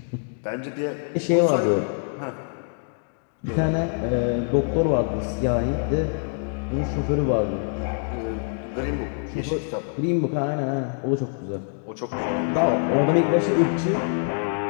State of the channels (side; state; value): right; silent; 61 dB below the other